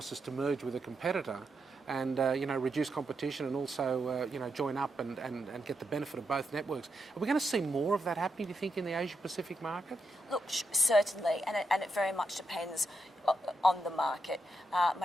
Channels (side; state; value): both; normal; correlation 0.84